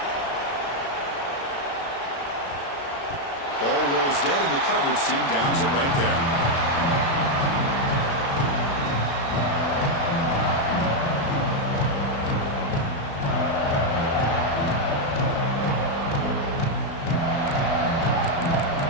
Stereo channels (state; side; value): late; right; 36 ms